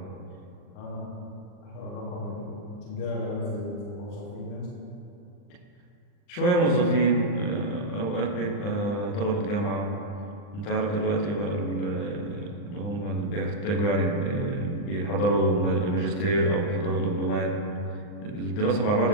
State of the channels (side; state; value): right; late; 39 ms